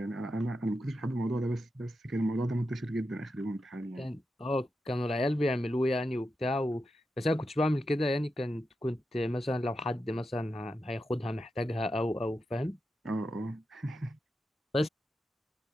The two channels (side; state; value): both; normal; correlation 0.88